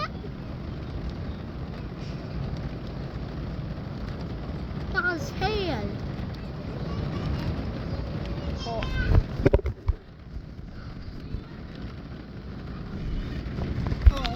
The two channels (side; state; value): both; identical; correlation 1.00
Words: That's hail. Oh.